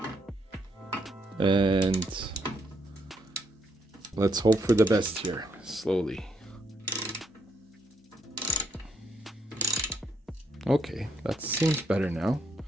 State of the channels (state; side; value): normal; both; correlation 0.75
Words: and let's hope for the best here, slowly. Okay, that seems better now.